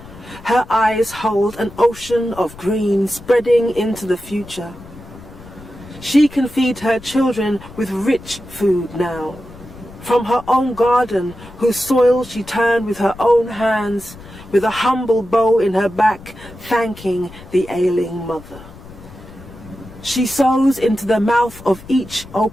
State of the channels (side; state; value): left; noise; rumble, 18 dB below the sound